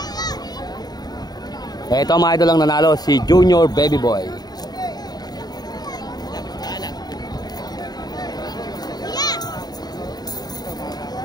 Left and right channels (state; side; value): late; right; 0.19 ms